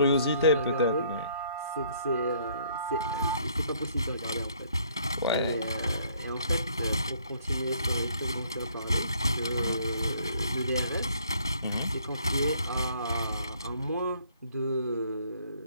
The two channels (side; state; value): both; inverted; correlation -0.63